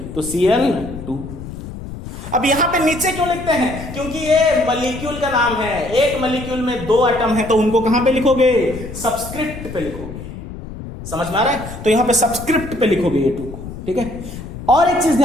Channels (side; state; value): left; noise; rumble, 11 dB below the sound